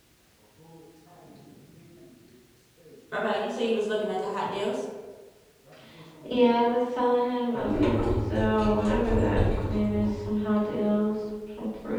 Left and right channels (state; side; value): identical; both; correlation 1.00